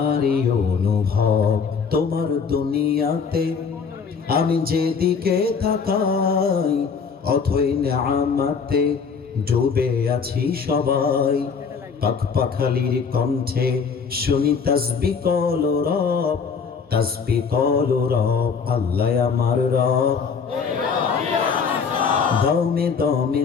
অনুভব, তোমার দুনিয়াতে আমি যেদিকে তাকাই অথই নেয়ামতে ডুবে আছি সবাই। পাখপাখালির কণ্ঠে শুনি তাসবিহ কলো রব, তাসবিহ কলো রব, আল্লাহ আমার রব। দমে দমে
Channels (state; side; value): quieter; right; 5.8 dB